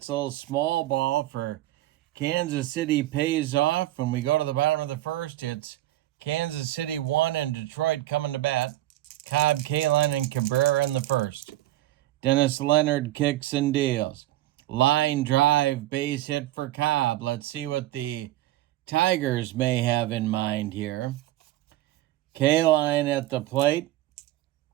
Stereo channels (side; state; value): left; quieter; 15.5 dB